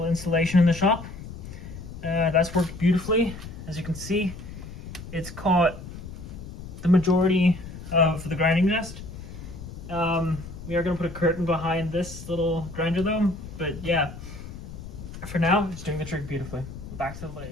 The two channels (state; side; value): noise; left; rumble, 12 dB below the sound